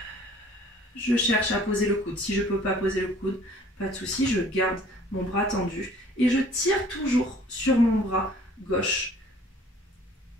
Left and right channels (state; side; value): normal; both; correlation 0.53